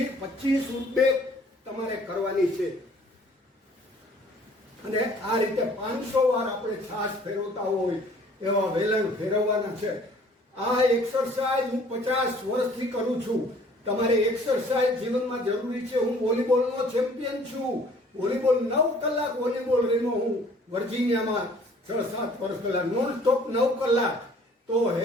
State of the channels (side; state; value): both; normal; correlation 0.55